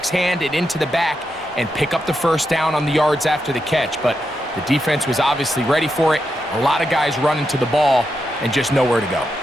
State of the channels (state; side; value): normal; both; correlation 0.85